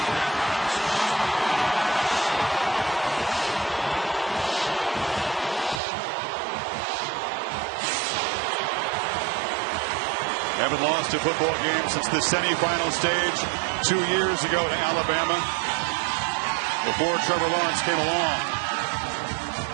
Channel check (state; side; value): drops out; left; at 5.8 s